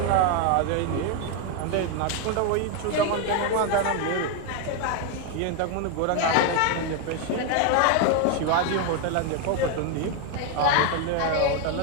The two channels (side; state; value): both; different; correlation 0.01